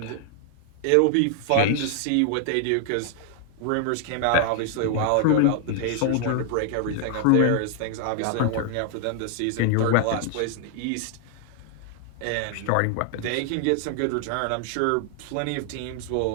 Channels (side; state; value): both; different; correlation 0.00